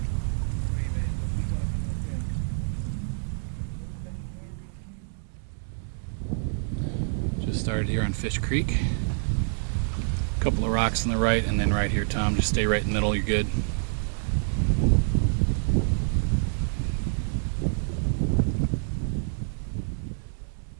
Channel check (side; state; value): left; silent; 58 dB below the other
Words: Just started here on Fish Creek. A couple of rocks on the right, and then right here, Tom. Just stay right in the middle, you're good.